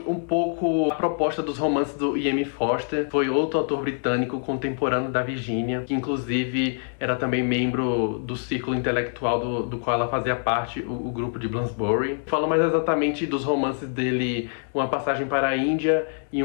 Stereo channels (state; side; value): silent; right; digital silence